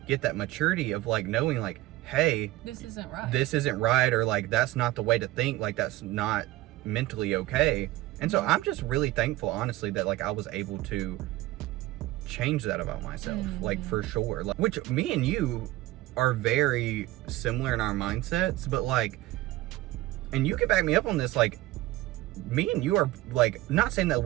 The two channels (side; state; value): left; quieter; 17.2 dB